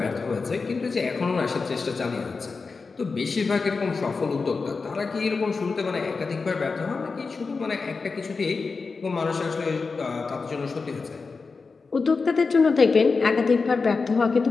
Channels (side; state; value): right; quieter; 4.5 dB